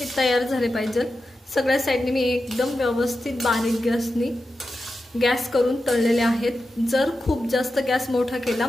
तयार झाले पाहिजे। सगळ्या साईडने मी एकदम व्यवस्थित बारीक गॅस करून तळलेले आहेत। जर खूप जास्त गॅस मोठा केला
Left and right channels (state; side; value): normal; both; correlation 0.91